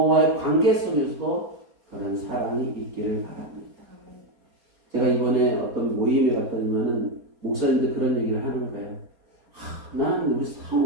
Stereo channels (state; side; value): late; left; 4.3 ms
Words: 관계 속에서도 그런 사랑이 있기를 바랍니다. 제가 이번에 어떤 모임에 갔더니만은 목사님들 그런 얘기를 하는 거예요. 난 우리